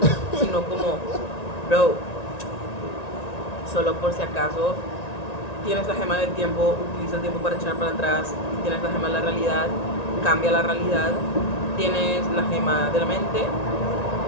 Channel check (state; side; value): late; right; 1.9 ms